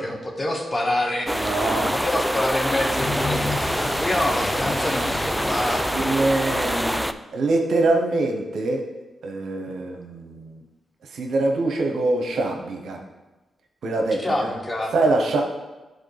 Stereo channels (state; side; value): normal; both; correlation 0.88